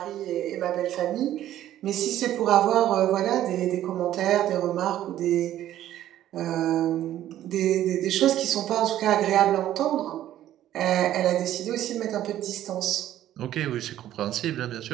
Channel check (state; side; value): quieter; left; 12.6 dB